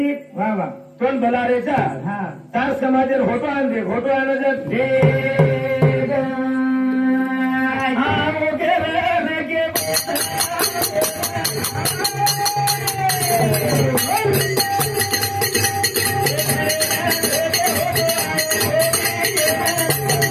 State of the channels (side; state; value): both; identical; correlation 1.00